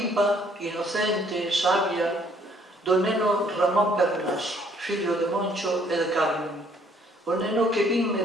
inocente, sabia do neno Ramón Pernas, fillo de Moncho e de Carmen. O neno que vin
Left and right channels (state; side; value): normal; both; correlation 0.63